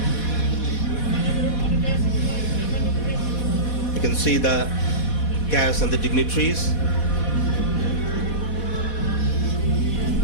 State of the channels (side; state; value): right; late; 4.1 ms